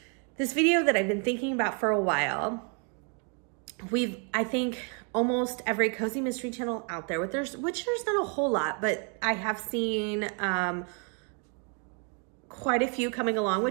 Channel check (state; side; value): quieter; left; 37.3 dB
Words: this video that I've been thinking about for a while. I think almost every cozy mystery channel out there, which there's not a whole lot, but I have seen quite a few coming along,